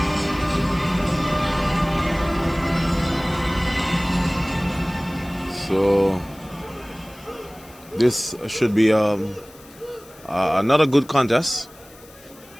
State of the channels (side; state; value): left; noise; hiss, 24 dB below the sound